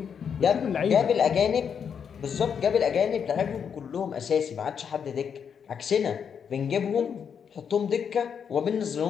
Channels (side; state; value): right; quieter; 7.3 dB